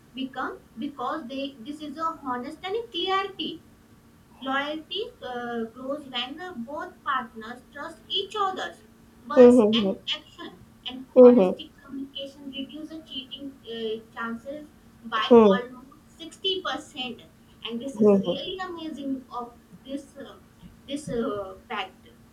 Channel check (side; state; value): both; identical; correlation 1.00